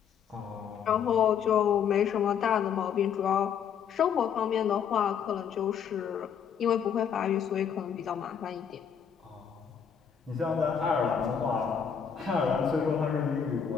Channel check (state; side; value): quieter; right; 7.7 dB